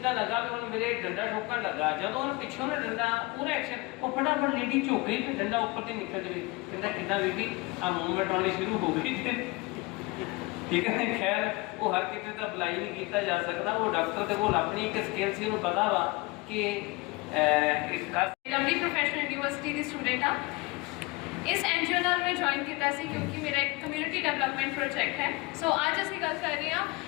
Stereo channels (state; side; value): quieter; right; 24.3 dB